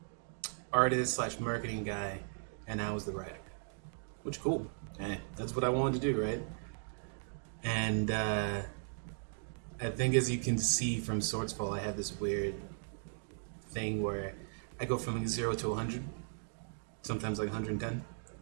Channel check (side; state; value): left; silent; digital silence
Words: artist slash marketing guy, and I was the writer. Which cool. Hey, that's what I wanted to do, right? And I think as you can see from Swordsfall, I have this weird thing where I go from like 0 to 100, sometimes like 110.